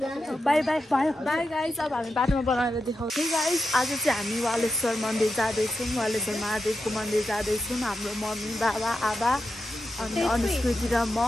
बाई बाई भयो. बाई गाइस, अब हामी बाटोमा बनाएर देखाउँछौँ. गाइस, आज चाहिँ हामी वालेश्वर मन्दिर जाँदैछौँ. वालेश्वर महादेवको मन्दिर जाँदैछौँ. हाम्रो मम्मी बाबा आबा अनि अनुस्कृति र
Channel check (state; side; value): normal; both; correlation 0.89